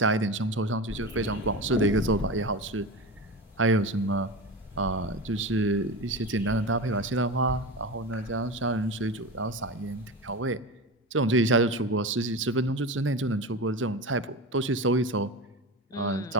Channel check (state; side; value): normal; both; correlation 0.25